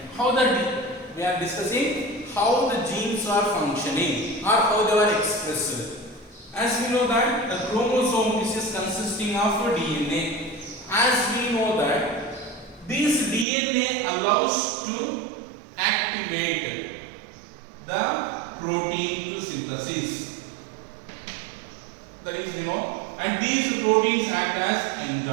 How that we are discussing how the genes are functioning or how they are expressed. As we know that the chromosome is consisting of DNA. As we know that this DNA allows to activate the protein to synthesis. That is, we know. And these proteins act as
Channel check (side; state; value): left; drops out; at 13.5 s